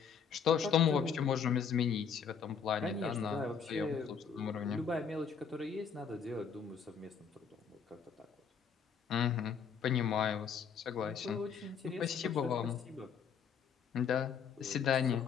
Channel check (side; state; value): right; quieter; 6.8 dB